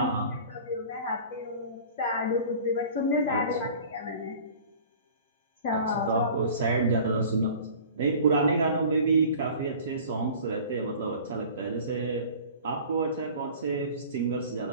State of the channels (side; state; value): both; inverted; correlation -0.44